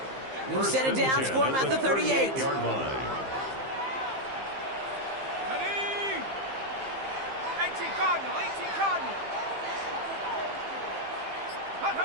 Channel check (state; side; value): late; left; 15 ms